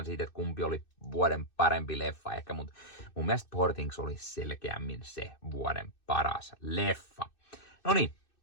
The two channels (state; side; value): late; right; 2.6 ms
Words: siitä, että kumpi oli vuoden parempi leffa ehkä, mutta mun mielestä Poor Things oli selkeämmin se vuoden paras leffa. No niin,